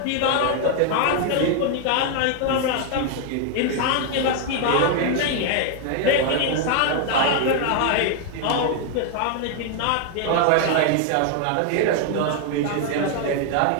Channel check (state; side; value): different; both; correlation 0.00